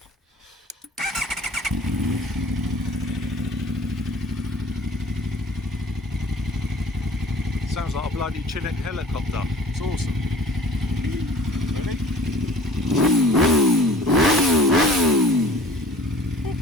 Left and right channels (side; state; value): both; normal; correlation 0.47